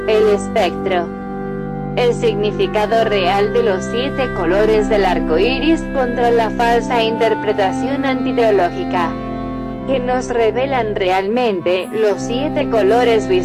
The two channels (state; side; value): identical; both; correlation 1.00